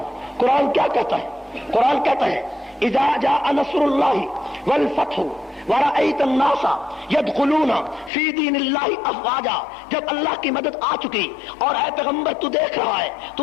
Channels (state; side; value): drops out; right; at 8.1 s